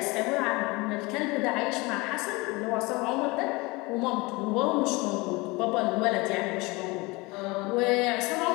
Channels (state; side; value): quieter; right; 24.3 dB